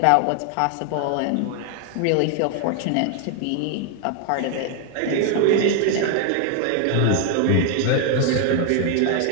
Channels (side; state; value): both; different; correlation 0.00